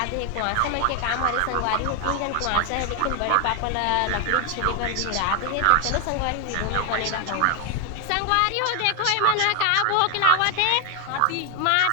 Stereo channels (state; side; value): different; both; correlation 0.01